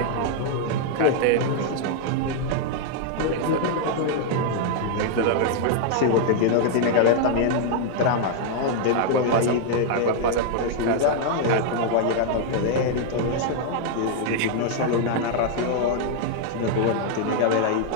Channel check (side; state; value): both; different; correlation 0.00